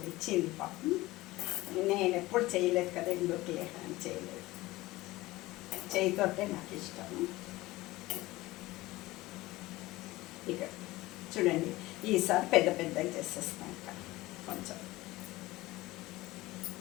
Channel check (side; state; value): right; quieter; 19.0 dB